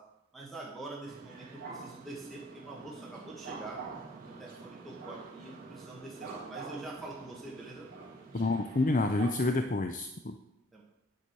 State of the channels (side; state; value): both; normal; correlation 0.60